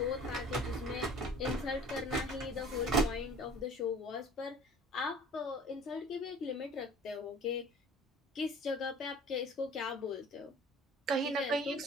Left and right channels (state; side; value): normal; both; correlation 0.47